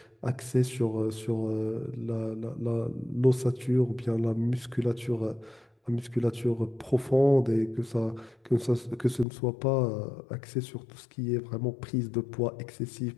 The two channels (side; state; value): right; drops out; at 9.2 s